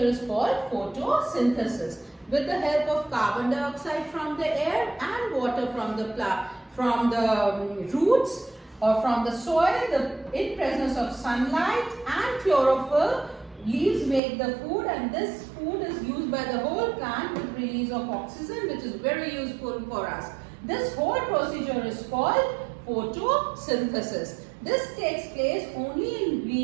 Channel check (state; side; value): drops out; left; at 14.2 s